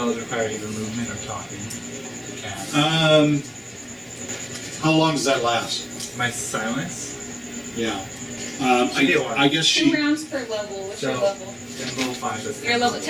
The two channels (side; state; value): both; identical; correlation 1.00